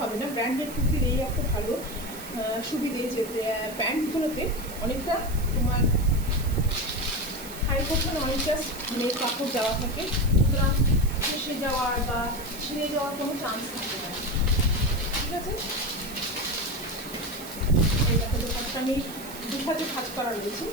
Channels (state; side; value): noise; right; hiss, 13 dB below the sound